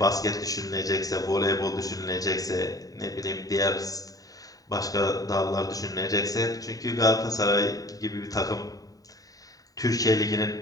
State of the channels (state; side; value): late; right; 0.18 ms